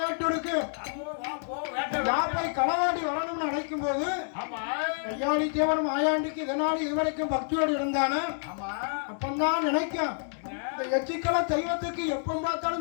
இருக்கு. போய் களவாடி வரணும்னு நினைக்கும் போது ஐயாடி தேவன் மாயாண்டிக்கு இதனால இதுவரைக்கும் பக்தியோடு இருந்தானே அப்பந்தான் நினைக்கும் இந்த எச்சிக்கல தெய்வத்துக்கு எப்ப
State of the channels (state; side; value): silent; right; digital silence